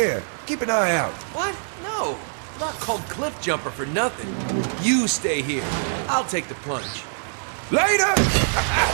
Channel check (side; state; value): left; silent; digital silence